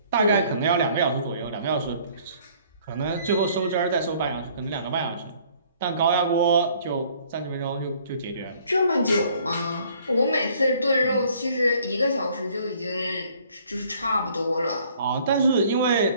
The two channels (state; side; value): inverted; both; correlation -0.59